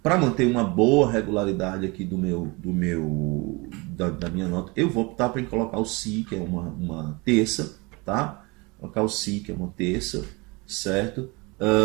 para manter uma boa regularidade aqui da minha nota, eu vou optar para colocar o Si, que é uma terça, tá? Colocar o Si, que é uma terça, certo?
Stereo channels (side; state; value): left; quieter; 26.6 dB